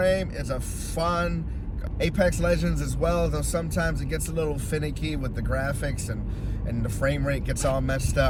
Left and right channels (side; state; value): both; identical; correlation 1.00